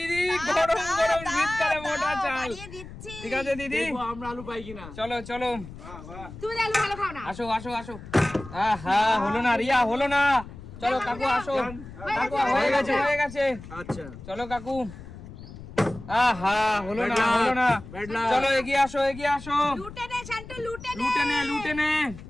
গরম গরম শীতকালে মোটা চাল, ঠিক আছে দিদি। আমরা আলু পাই কিনা। চলো চলো, তুমি আলু ভালো খাও না। আসো আসো আসো। আহা হলো না রিয়া, হলো না। চলো কাকু আসো, কাকু হয়ে গেছে হয়ে গেছে। আচ্ছা চলো কাকু। আহা হলো না হলো না। চলো এগিয়ে আসো এগিয়ে আসো। লুটে নে শান্তু, লুটে নে। লুটে নে লুটে নে।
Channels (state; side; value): noise; left; rumble, 14 dB below the sound